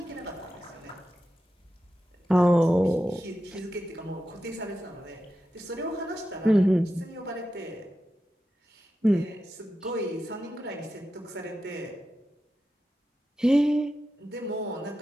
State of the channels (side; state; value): both; normal; correlation 0.90